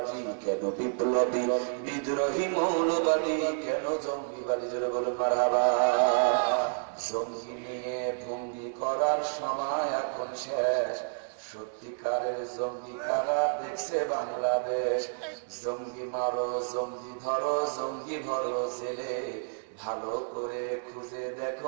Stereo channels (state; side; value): silent; left; digital silence